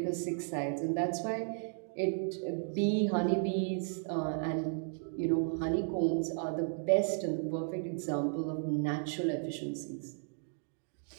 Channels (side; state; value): left; silent; digital silence